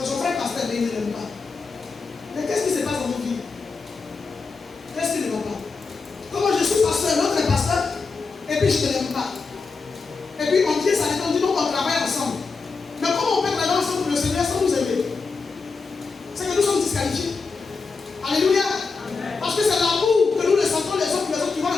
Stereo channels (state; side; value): quieter; right; 4.5 dB